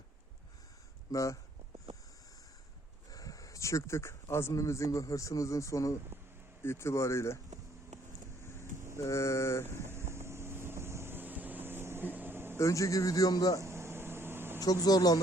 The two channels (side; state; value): both; normal; correlation 0.64